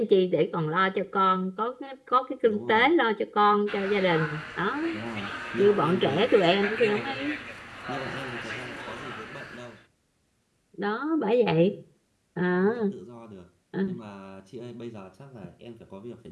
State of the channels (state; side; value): identical; both; correlation 1.00